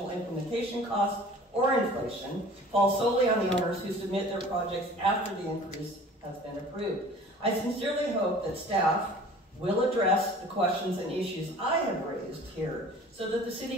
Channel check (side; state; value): both; normal; correlation 0.46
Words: implementation costs or inflation, fall solely on the owners who submit their projects after the increase has been approved? I sincerely hope that staff will address the questions and issues I have raised here so that the